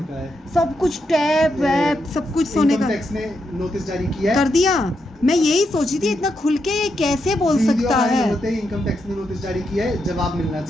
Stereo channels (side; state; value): both; normal; correlation 0.82